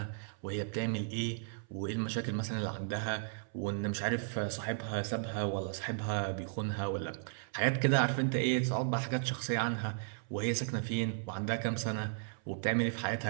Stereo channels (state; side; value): silent; left; 54 dB below the other